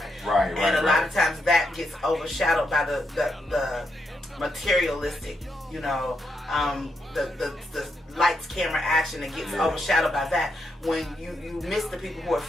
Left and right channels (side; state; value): both; normal; correlation 0.82